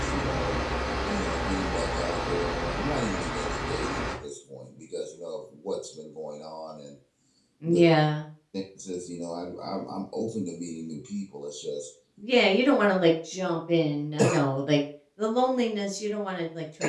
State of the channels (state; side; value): identical; both; correlation 1.00